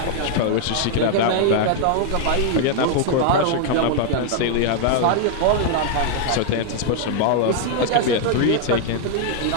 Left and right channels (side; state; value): both; different; correlation 0.00